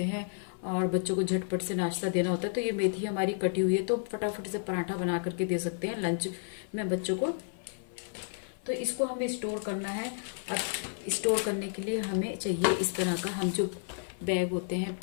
हैं और बच्चों को झटपट से नाश्ता देना होता है, तो ये मेथी हमारी कटी हुई है, तो फटाफट से पराठा बना करके दे सकते हैं लंच में बच्चों को। तो इसको हमें स्टोर करना है। अब स्टोर करने के लिए हमें चाहिए इस तरह का, हम जो बैग होते हैं,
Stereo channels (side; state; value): right; silent; 57 dB below the other